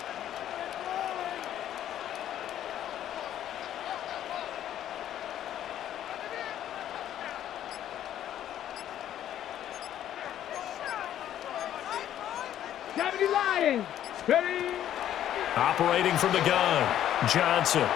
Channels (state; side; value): quieter; right; 11.3 dB